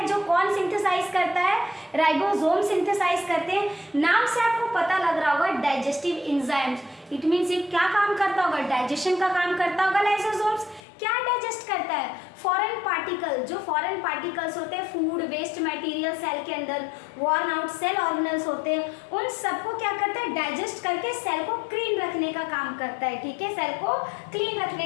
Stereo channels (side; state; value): right; drops out; at 10.8 s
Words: जो कौन सिंथेसाइज करता है, राइबोसोम सिंथेसाइज करते हैं। नाम से आपको पता लग रहा होगा डाइजेस्टिव एंजाइम्स, इट मींस ये क्या काम करता होगा, डाइजेशन का काम करता होगा। लाइसोसोम्स क्या डाइजेस्ट करता है, फॉरेन पार्टिकल, जो फॉरेन पार्टिकल्स होते हैं, फूड वेस्ट मटेरियल सेल के अंदर वॉर्न आउट सेल ऑर्गेनल्स होते हैं, उन सबको क्या करता है, डाइजेस्ट करके सेल को क्लीन रखने का काम करता है, ठीक है, सेल को क्लीन